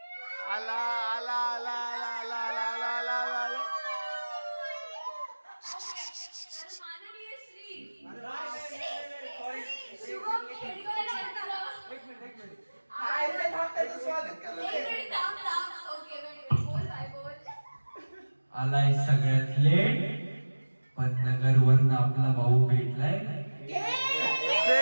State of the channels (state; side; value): inverted; both; correlation -1.00